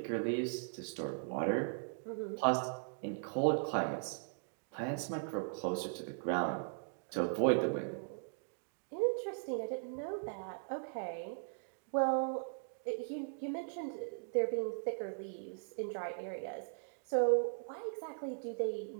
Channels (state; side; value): silent; left; digital silence